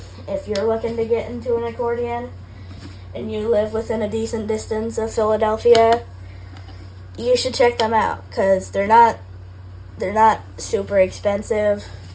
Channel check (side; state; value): both; identical; correlation 1.00